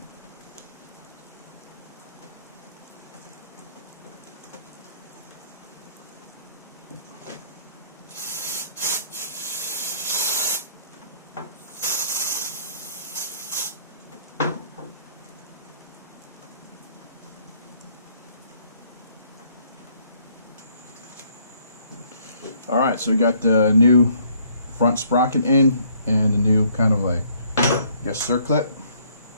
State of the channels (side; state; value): both; inverted; correlation -0.63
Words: Alright, so we got the new front sprocket in and the new kind of like, I guess, circlip.